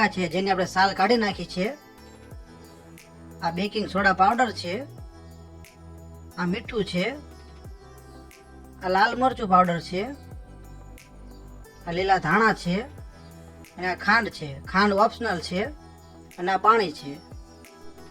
છે જેની આપણે સાલ કાઢી નાખી છે, આ બેકિંગ સોડા પાવડર છે, આ મીઠું છે, આ લાલ મરચું પાવડર છે, આ લીલા ધાણા છે, અને આ ખાંડ છે। ખાંડ ઓપ્શનલ છે, અને આ પાણી છે।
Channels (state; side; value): identical; both; correlation 1.00